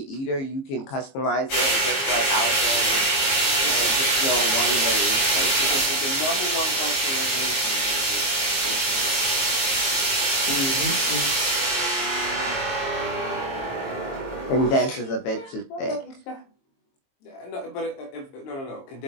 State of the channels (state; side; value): late; right; 22 ms